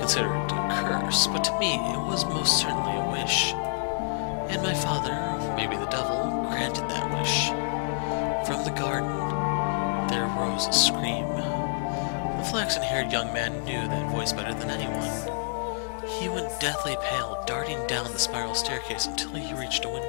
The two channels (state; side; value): silent; right; 60 dB below the other